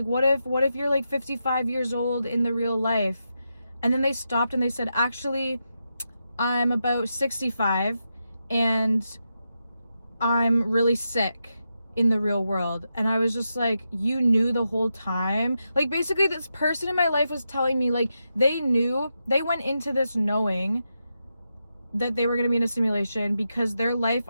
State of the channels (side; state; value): both; inverted; correlation -0.86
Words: what if you're like 55 years old in the real life? And then they stopped and they said, actually, I'm about 65 and I'm really sick in the real world. And I was just like, you knew the whole time? Like, basically this person in my life was telling me, like, they knew, they went into this knowing that they were going to be in a simulation, because their life